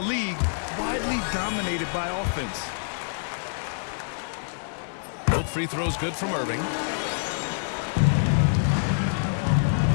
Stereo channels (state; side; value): silent; right; 61 dB below the other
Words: widely dominated by offense. Both free throws good from Irving.